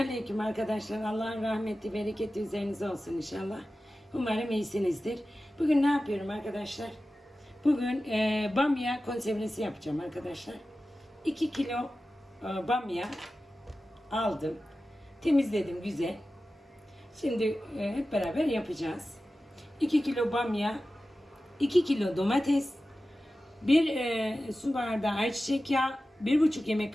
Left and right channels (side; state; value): both; normal; correlation 0.94